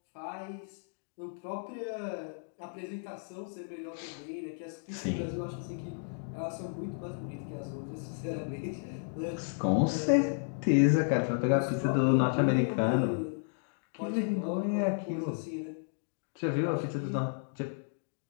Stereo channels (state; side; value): silent; right; digital silence